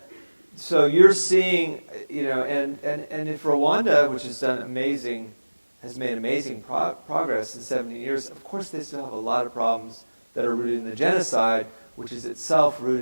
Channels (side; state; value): both; inverted; correlation -1.00